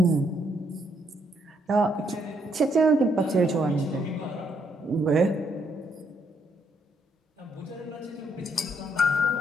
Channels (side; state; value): both; normal; correlation 0.73